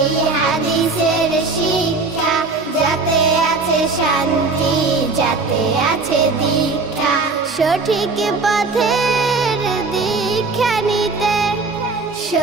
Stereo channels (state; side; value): quieter; left; 3.9 dB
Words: হাদিসের শিক্ষা, যাতে আছে শান্তি, যাতে আছে দীক্ষা। সঠিক পথের দীক্ষা নিতে,